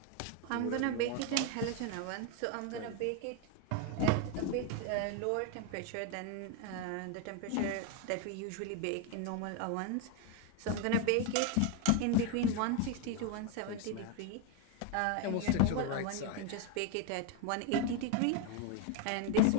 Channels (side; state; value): both; different; correlation 0.01